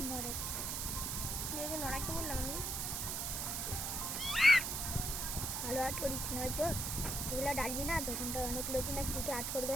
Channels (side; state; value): right; noise; hiss, 1 dB below the sound